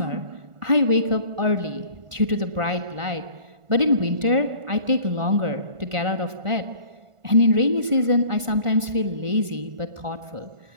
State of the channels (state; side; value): late; left; 1.4 ms